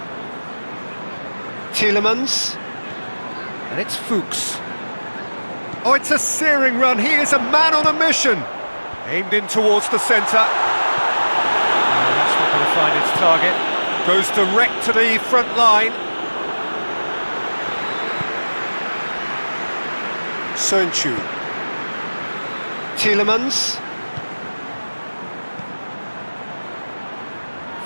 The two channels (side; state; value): both; inverted; correlation -1.00